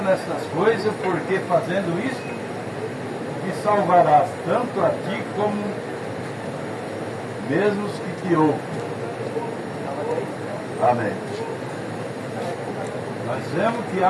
nessas coisas, porque fazendo isso, te salvarás tanto a ti como mesmo os que te ouvem. Amém. Nós vemos que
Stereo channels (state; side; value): identical; both; correlation 1.00